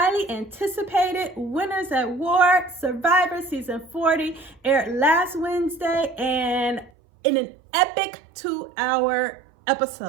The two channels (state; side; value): drops out; left; at 6.9 s